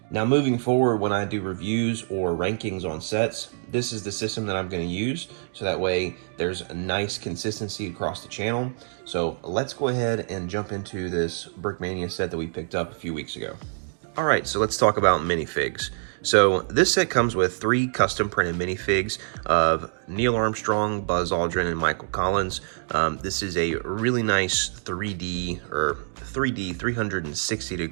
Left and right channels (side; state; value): left; silent; digital silence